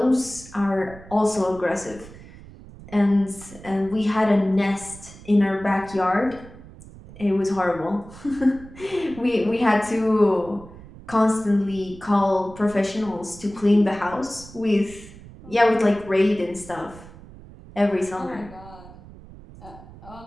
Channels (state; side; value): noise; right; rumble, 18 dB below the sound